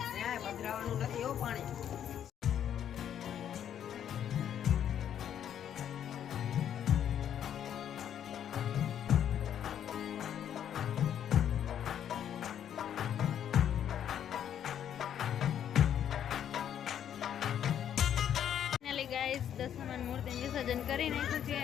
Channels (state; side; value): quieter; right; 9.6 dB